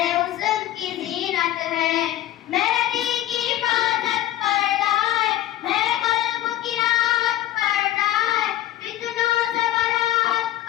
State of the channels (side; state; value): right; quieter; 13.5 dB